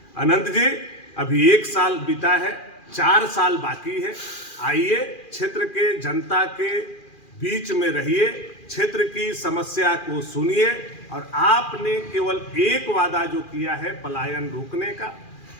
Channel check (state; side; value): late; right; 2.4 ms